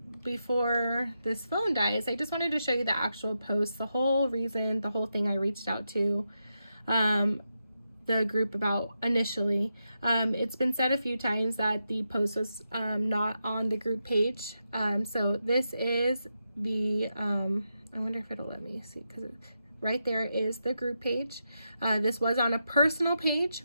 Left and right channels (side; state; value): both; inverted; correlation -0.86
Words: before this phone dies, I just wanted to show you the actual post, the whole reason, the whole thing I reached out to the group about initially. It's been said a few times that the post was not on the group page. So this is the, I wonder if it'll let me see, because right there is the group page. This was on a personal page,